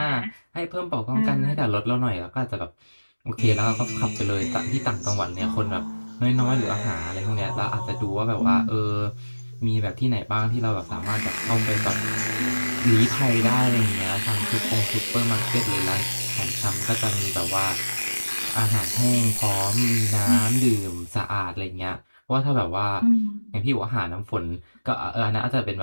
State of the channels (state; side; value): inverted; both; correlation -1.00